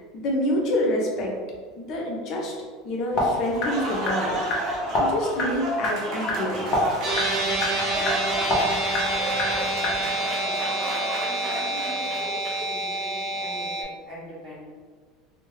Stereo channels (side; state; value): both; normal; correlation 0.33